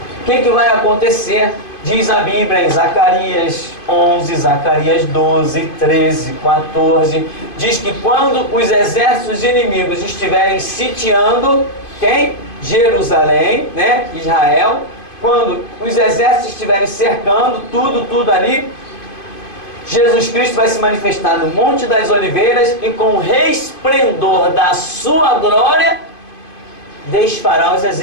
O que vai acontecer? Diz a Bíblia em Zacarias 11, Zacarias 12, 13, 14, diz que quando os exércitos inimigos estiverem sitiando, quem? Jerusalém, né? Israel. Quando os exércitos estiverem cercando tudo ali, Jesus Cristo vai se manifestar no Monte das Oliveiras e com o resplendor da sua glória desfará os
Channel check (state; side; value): late; right; 2.5 ms